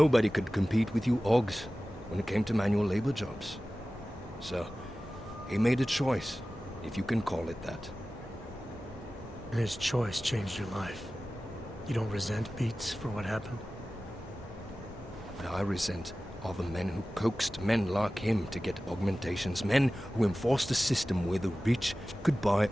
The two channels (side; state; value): both; normal; correlation 0.96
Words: could compete with you Ogs when it came to manual labor jobs. So, he made a choice, if you can call it that. And his choice changed your life. You don't resent Beats for what happened? What I resent are the men who coaxed men like him to get augmentations, men who enforced a system where the rich could buy